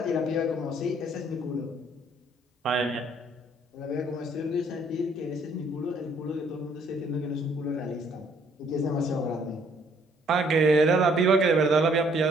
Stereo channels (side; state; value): both; normal; correlation 0.64